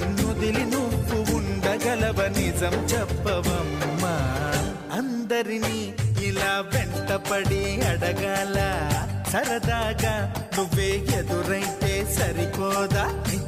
నువ్వు ఉండగలవ నిజం చెప్పవమ్మా అందరినీ ఇలా వెంటపడి అడగాల సరదాగా నువ్వే ఎదురైతే సరిపోదా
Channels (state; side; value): identical; both; correlation 1.00